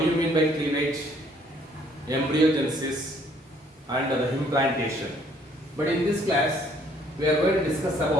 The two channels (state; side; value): normal; both; correlation 0.63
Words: you mean by cleavage, embryogenesis, and the implantation. But in this class, we are going to discuss